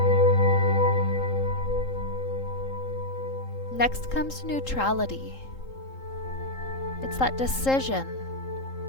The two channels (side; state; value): right; late; 3.8 ms